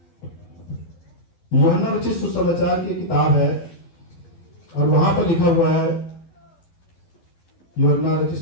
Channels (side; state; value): right; late; 12 ms